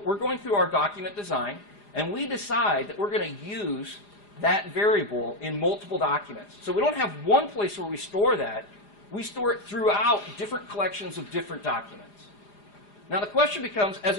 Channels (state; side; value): late; right; 4.9 ms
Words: going through our document design, and we decide that we're going to use that variable in multiple documents. So we don't have one place where we store that. We store it throughout different collections of different documents. Now the question becomes, as